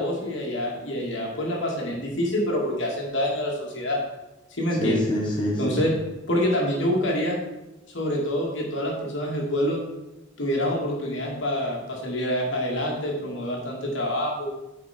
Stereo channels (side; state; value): both; normal; correlation 0.27